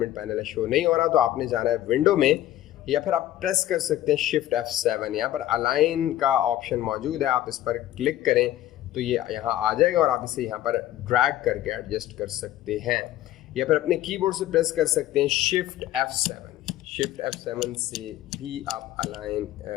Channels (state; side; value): quieter; right; 13.6 dB